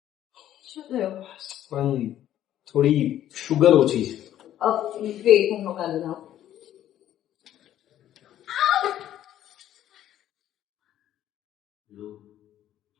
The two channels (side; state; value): right; quieter; 11.9 dB